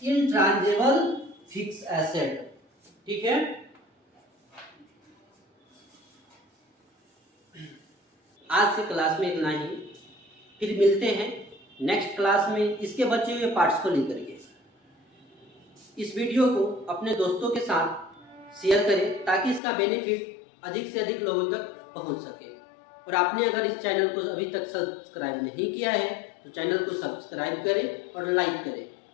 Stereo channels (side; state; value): right; drops out; at 19.6 s